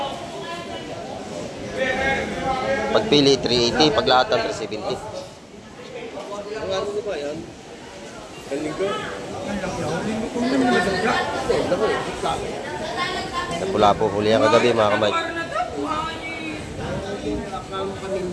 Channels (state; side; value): identical; both; correlation 1.00